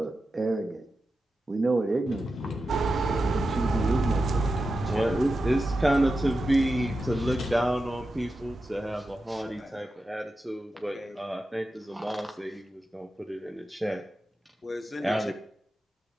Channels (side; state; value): both; normal; correlation 0.91